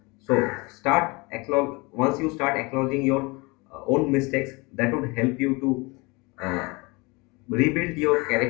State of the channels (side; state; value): right; quieter; 26.4 dB